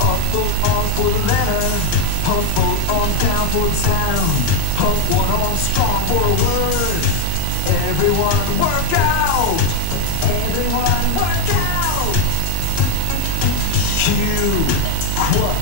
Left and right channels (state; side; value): different; both; correlation 0.00